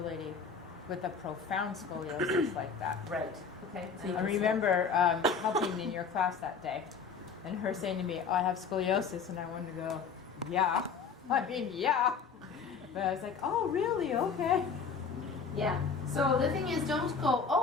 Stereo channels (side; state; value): right; quieter; 5.6 dB